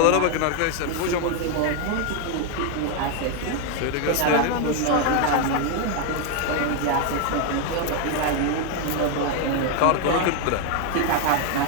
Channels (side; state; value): both; different; correlation 0.01